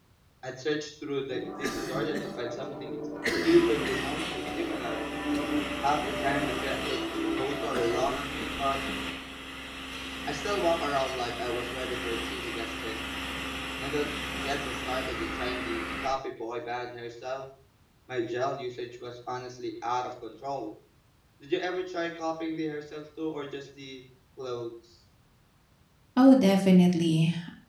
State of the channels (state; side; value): identical; both; correlation 1.00